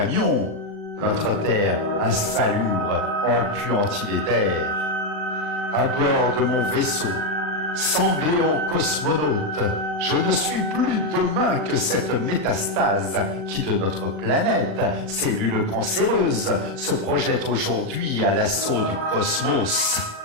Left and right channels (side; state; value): left; late; 39 ms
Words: notre terre insalubre, empuantie les terres. À bord de mon vaisseau, sanglé en cosmonaute, Je ne suis plus demain que cette métastase qui de notre planète, cellule cancéreuse, se projette aujourd'hui à l'assaut du cosmos.